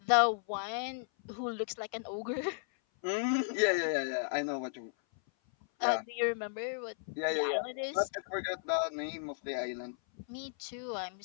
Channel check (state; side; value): silent; right; 55 dB below the other